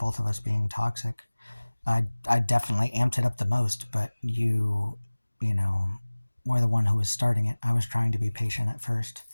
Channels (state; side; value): inverted; both; correlation -1.00